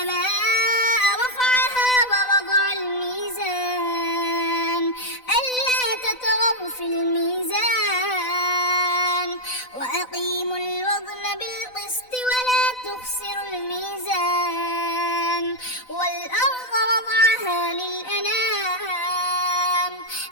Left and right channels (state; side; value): late; right; 4.0 ms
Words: رفعها ووضع الميزان ألا تطغوا في الميزان وأقيموا الوزن بالقسط ولا تخسروا الميزان والأرض وضعها للأنام